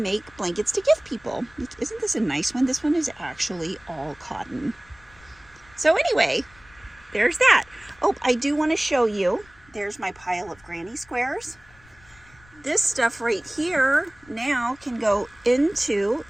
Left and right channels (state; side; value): noise; left; rumble, 27 dB below the sound